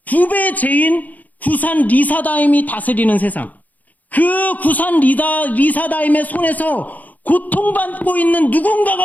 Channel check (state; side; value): late; right; 0.079 ms